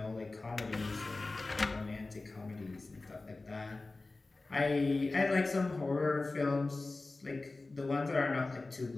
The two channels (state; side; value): quieter; right; 3.3 dB